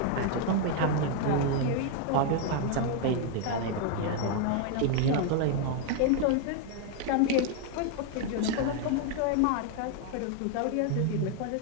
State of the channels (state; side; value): different; both; correlation 0.00